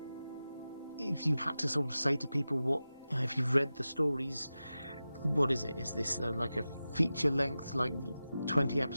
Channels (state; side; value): inverted; both; correlation -0.94